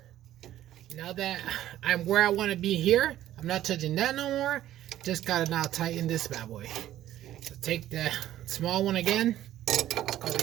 Now that I'm where I want to be here, I'm not touching that no more. Just gotta now tighten this bad boy. So take the small one again. Let's go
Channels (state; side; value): quieter; left; 13.0 dB